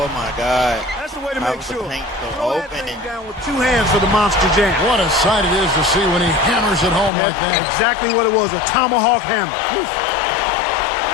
my God. That's the way to How make was the sure. paint so Throw that open thing and- down with two hands for the monster jam. What a sight it is to see when he hammers it home like that. Exactly what it was, a tomahawk hammer. Oof.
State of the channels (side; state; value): right; drops out; at 7.1 s